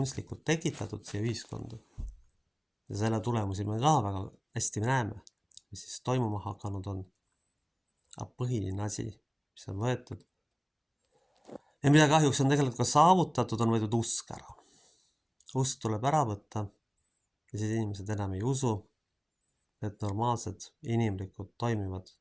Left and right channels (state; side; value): identical; both; correlation 1.00